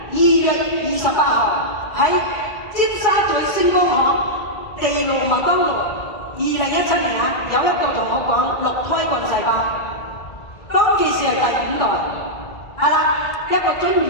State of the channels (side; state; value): right; late; 1.6 ms